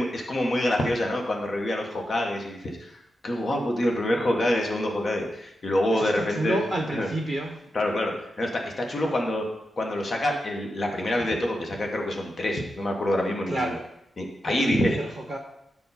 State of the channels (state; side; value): normal; both; correlation 0.88